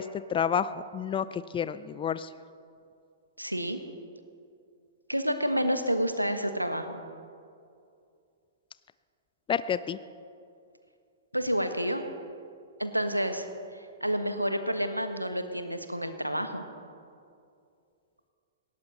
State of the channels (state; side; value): inverted; both; correlation -0.61